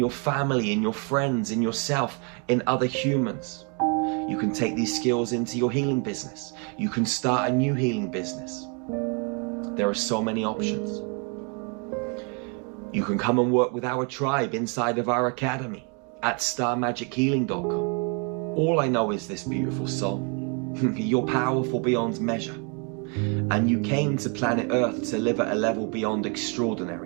family, in your friends, in yourself, in other humans. You can take these skills into your healing business. You can start a new healing business. There are so many options. You can come and work with our tribe inside of our academy at starmagichealing.com. All I know is this, beautiful soul. You're powerful beyond measure. And you came to planet Earth to live at a level beyond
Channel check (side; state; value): left; quieter; 36.2 dB